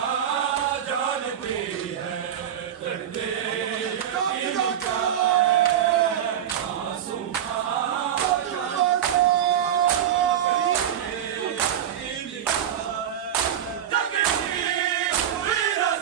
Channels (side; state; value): left; quieter; 9.9 dB